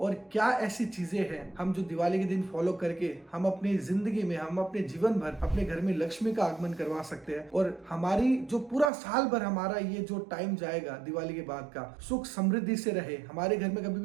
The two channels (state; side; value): drops out; left; at 8.9 s